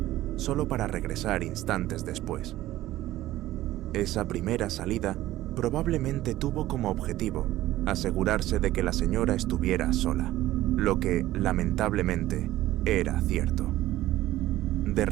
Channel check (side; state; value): left; quieter; 15.3 dB